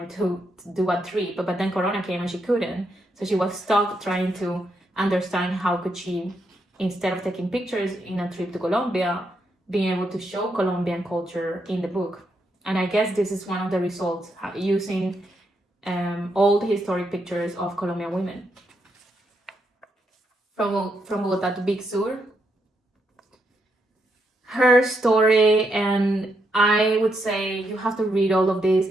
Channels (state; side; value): normal; both; correlation 0.80